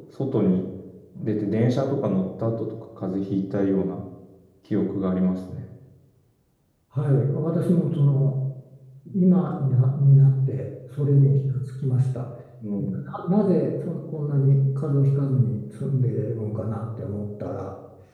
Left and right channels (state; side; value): identical; both; correlation 1.00